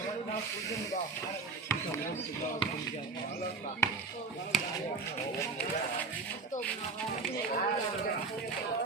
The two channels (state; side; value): quieter; left; 4.3 dB